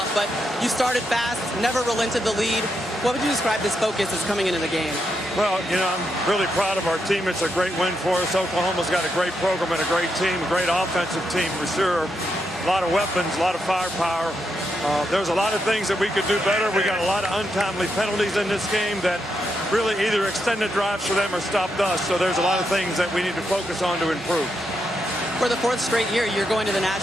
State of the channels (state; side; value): normal; both; correlation 0.82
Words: but you started fast, never relented the lead. What would you describe this focus as coming into the game? Well, you know, I'm really proud of our team. It's a great win for us. Oklahoma's got a great program and a great team, a great offensive team for sure. A lot of weapons, a lot of firepower. There's a lot of things that we could do better. We got a lot of untimely penalties in this game that really either extended drives for them or stopped us. So there's a lot of things that we need to focus on to improve. For the 4th straight year, you're going to the